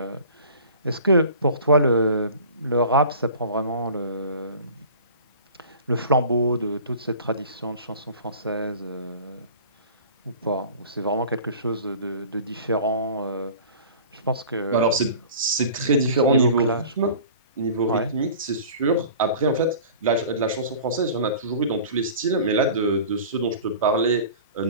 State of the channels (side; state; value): both; inverted; correlation -0.43